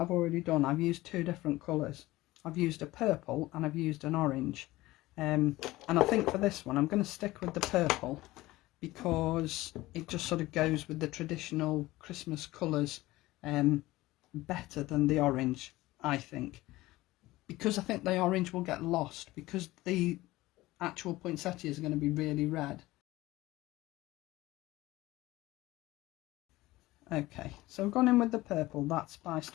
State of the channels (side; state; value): right; quieter; 18.3 dB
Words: already done, I've used 2 different colours. I've used a purple and I've used an orange. And I think for this one I'm going to stick with the purple because it just sort of goes with the traditional Christmas colours better than the orange, I think. Because I think the orange will get lost because the actual poinsettias are going to be really red. Okay, so I've gone in with the purple, that